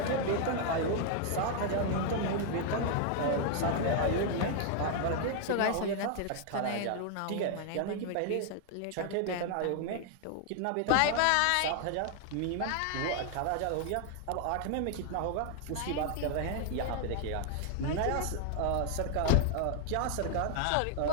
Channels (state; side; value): different; both; correlation 0.00